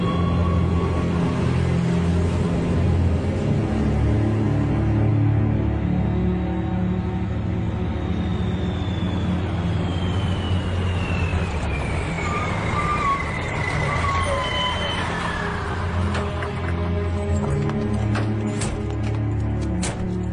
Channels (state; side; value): identical; both; correlation 1.00